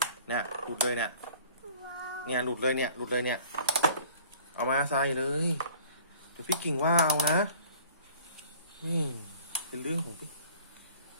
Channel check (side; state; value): both; inverted; correlation -0.50